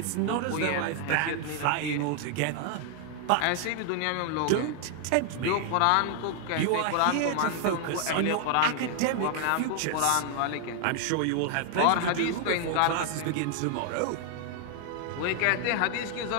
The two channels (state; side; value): different; both; correlation 0.00